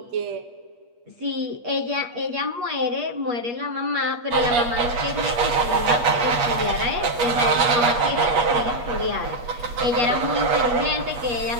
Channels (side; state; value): left; late; 8.4 ms